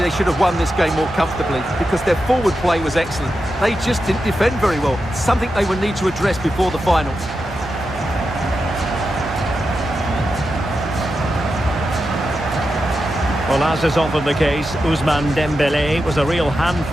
should have won this game more comfortably because their forward play was excellent. They just didn't defend very well, something they will need to address before the final. Well, as is often the case, Ousmane Dembélé was a real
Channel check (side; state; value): both; normal; correlation 0.89